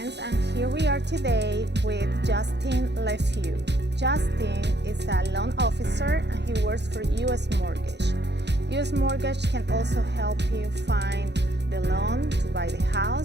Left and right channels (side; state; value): left; late; 0.50 ms